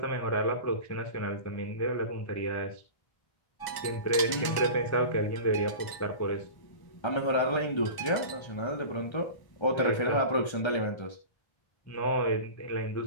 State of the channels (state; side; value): late; right; 1.1 ms